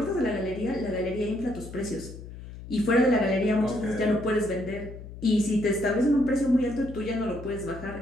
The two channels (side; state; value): left; noise; hum, 13 dB below the sound